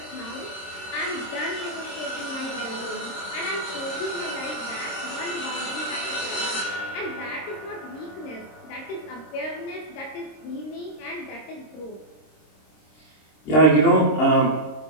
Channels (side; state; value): right; late; 26 ms